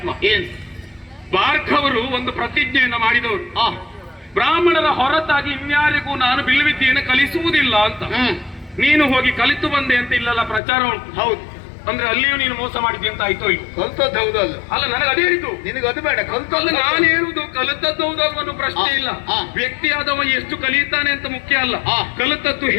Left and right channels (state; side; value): drops out; right; at 10.6 s